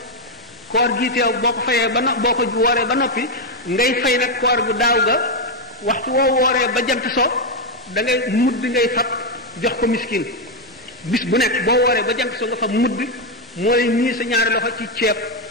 koor gi teew boo ko fayee boo ko wooree ba noppi ngay fay nag koor gu daaw ga waxtu woo wooree ba jant so da ngay mudd ngay fab jox ko miskin bis bu nekk boo wooree ba jant so nga fab mudd mooy ñii sa ñaari loxo ci ceeb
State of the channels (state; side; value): normal; both; correlation 0.03